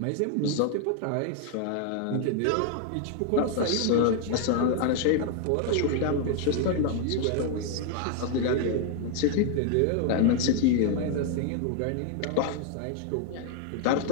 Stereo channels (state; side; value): different; both; correlation 0.00